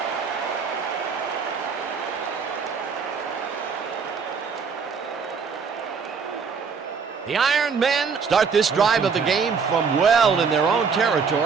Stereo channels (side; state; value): left; quieter; 5.7 dB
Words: The Iron Men start this drive of the game from well in their own